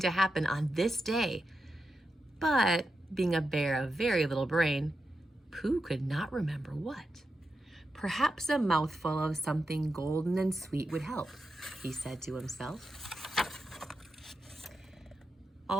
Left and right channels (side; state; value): both; normal; correlation 0.88